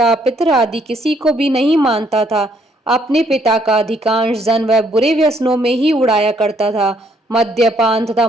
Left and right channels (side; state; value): both; normal; correlation 0.68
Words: पितर आदि किसी को भी नहीं मानता था। अपने पिता का अधिकांश धन वह बुरे व्यसनों में ही उड़ाया करता था। मद्यपान तथा